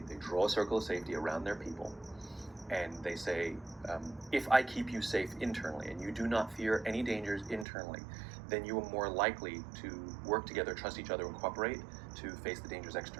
draw a circle of safety around their people, and they say, if I keep you safe internally and you do not fear any dangers internally, then you are more likely to work together, trust each other, and cooperate to face the dangers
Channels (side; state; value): left; drops out; at 7.7 s